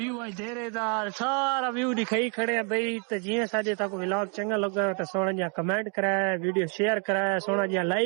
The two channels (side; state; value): left; quieter; 37.8 dB